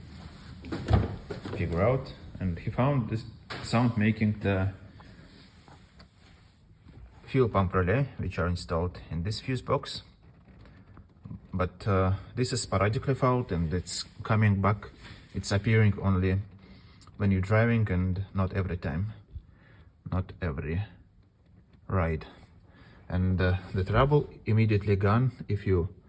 figure out, and he found this sound making the fuel pump relay, which are installed in this fuse box. But this is sporadically fouled and it's coming back. It's appearing only when you're driving and not every time, not every ride. And the trouble immediately gone if you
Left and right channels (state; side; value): identical; both; correlation 1.00